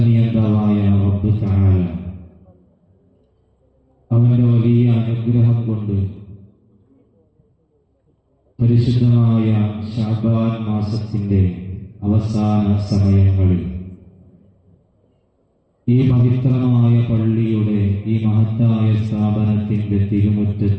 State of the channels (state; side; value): identical; both; correlation 1.00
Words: റബ്ബ് തആല അവന്റെ വലിയ അനുഗ്രഹം കൊണ്ട് പരിശുദ്ധമായ ശഅബാൻ മാസത്തിന്റെ അവസാന സമയങ്ങളിൽ ഈ പവിത്രമായ പള്ളിയുടെ ഈ മഹത്തായ സ്ഥാപനത്തിന്റെ